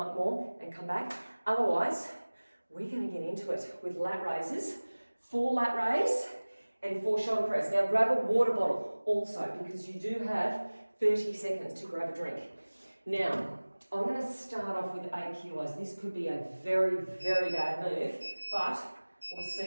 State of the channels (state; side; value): inverted; both; correlation -1.00